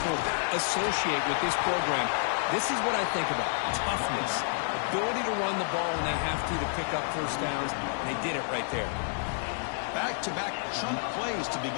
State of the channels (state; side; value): silent; right; digital silence